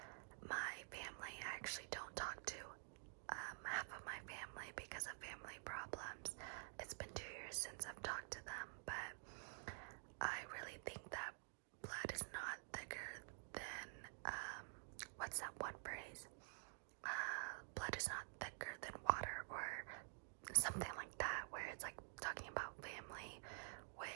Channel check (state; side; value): silent; left; digital silence